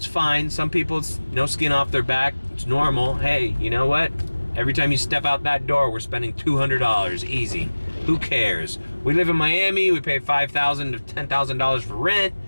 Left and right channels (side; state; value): both; inverted; correlation -1.00